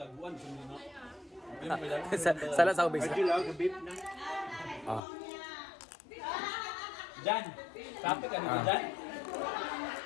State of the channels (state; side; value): drops out; right; at 5.0 s